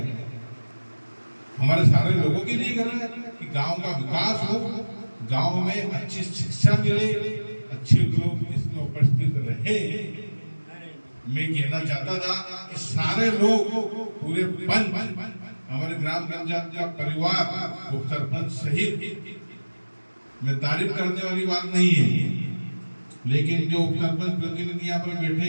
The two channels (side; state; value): both; inverted; correlation -1.00